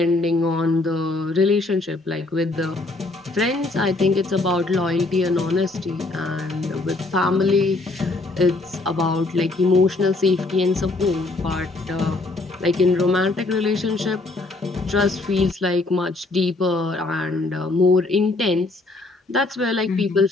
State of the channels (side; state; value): right; quieter; 3.1 dB